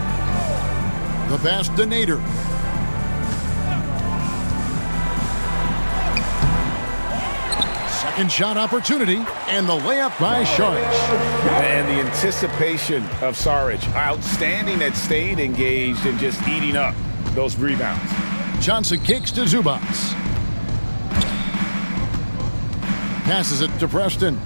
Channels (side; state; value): both; inverted; correlation -1.00